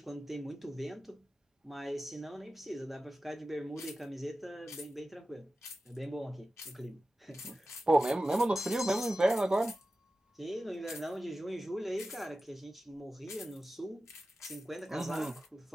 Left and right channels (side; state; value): both; normal; correlation 0.94